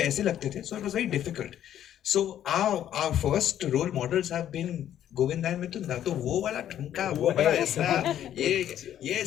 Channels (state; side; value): quieter; right; 10.9 dB